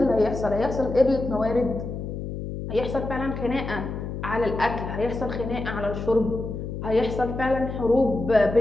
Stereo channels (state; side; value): noise; left; hum, 6 dB below the sound